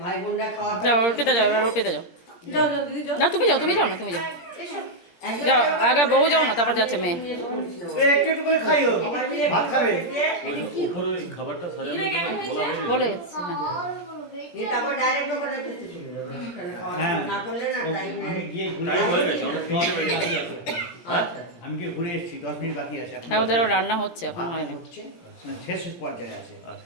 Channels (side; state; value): right; late; 17 ms